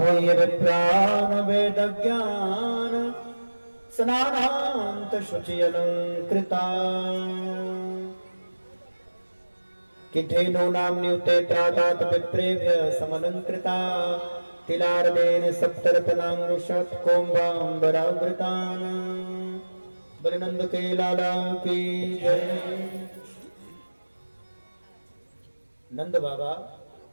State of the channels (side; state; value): both; inverted; correlation -1.00